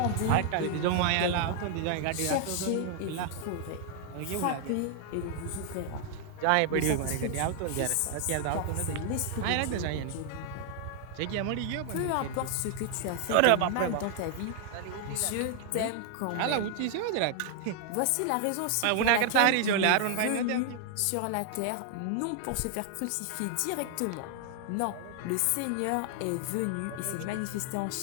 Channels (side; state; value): both; different; correlation 0.00